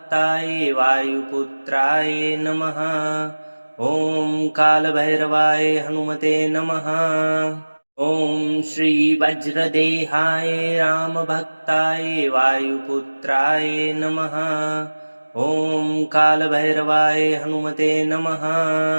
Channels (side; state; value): both; inverted; correlation -1.00